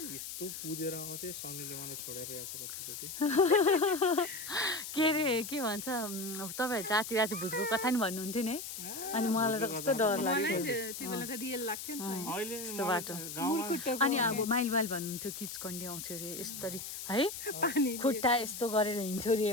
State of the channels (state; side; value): noise; left; hiss, 8 dB below the sound